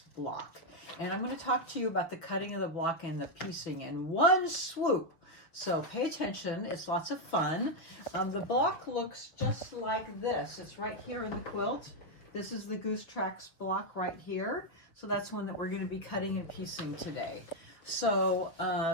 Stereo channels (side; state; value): right; late; 6.4 ms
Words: block. And I'm going to talk to you about the cutting of the block and the piecing in one swoop. So pay attention, it's lots of fun. The block looks just like this. It's right here in the quilt. This is the Goose Tracks block right here. So that's one that we're going to be cutting and piecing today. So